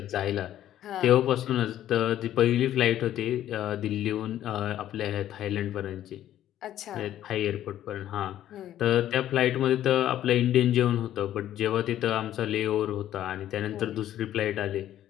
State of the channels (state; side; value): quieter; right; 12.1 dB